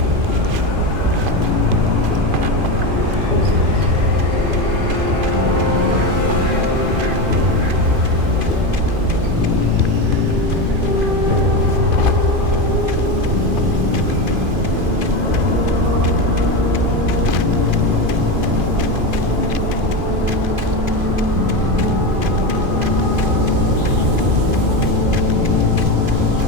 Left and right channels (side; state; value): left; late; 2.5 ms